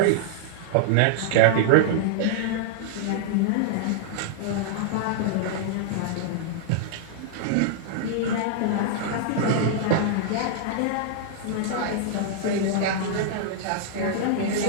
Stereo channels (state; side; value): different; both; correlation -0.01